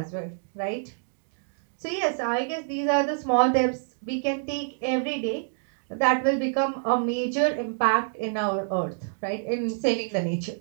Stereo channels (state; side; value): silent; left; digital silence